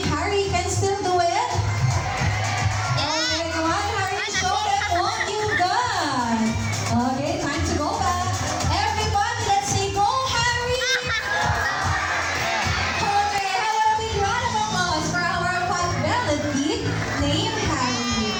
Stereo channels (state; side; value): identical; both; correlation 1.00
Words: Harry can still do it? Okay, come on, Harry, show them what you've done. Okay, time to go back. Everybody, let's say go, Harry! Okay, have a big round of applause for our pot-bellied pig named Harry.